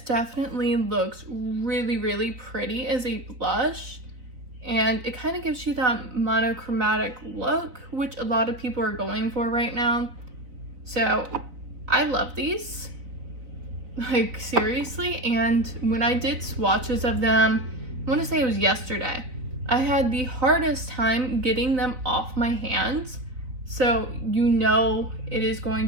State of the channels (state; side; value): late; left; 4.1 ms